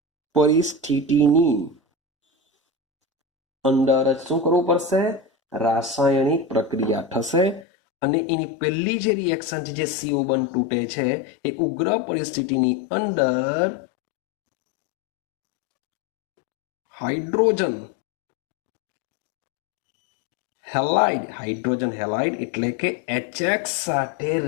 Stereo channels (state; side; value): drops out; right; at 7.7 s